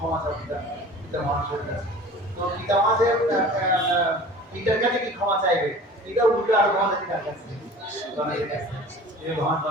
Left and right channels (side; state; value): both; normal; correlation 0.42